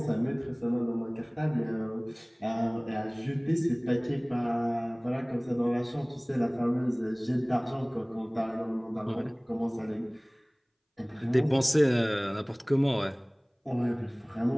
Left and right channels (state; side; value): identical; both; correlation 1.00